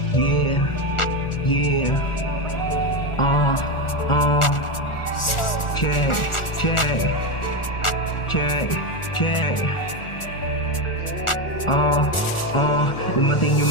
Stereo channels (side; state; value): right; late; 1.4 ms